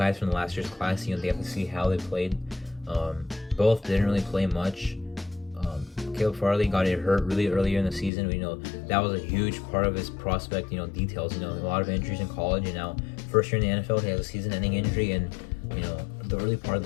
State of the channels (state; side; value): drops out; right; at 8.1 s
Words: from the last year's class. They have to see how they played. Both didn't really play much. Caleb Farley got hurt really earlier in the season. That was a huge part of his prospect, details. A lot of injuries in college, and now first year in the NFL, he has a season-ending injury in, the early part of